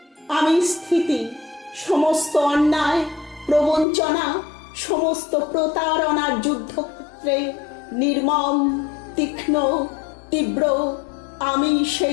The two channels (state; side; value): drops out; right; at 3.9 s